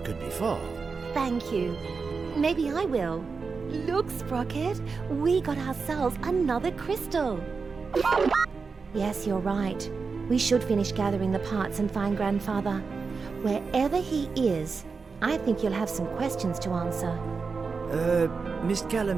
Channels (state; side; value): quieter; left; 4.8 dB